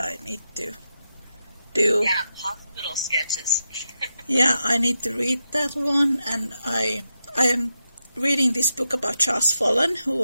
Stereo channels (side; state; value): both; inverted; correlation -0.87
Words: need to do. Yeah, hospital sketches. Yeah, I need to read that one, and I am reading this book about Charles Follen, who